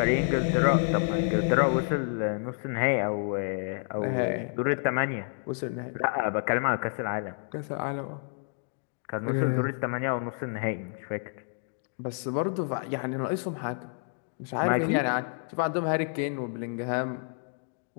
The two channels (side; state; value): right; silent; 58 dB below the other